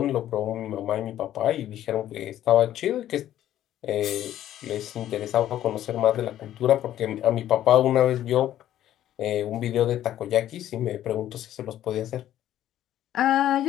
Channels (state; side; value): quieter; right; 12.2 dB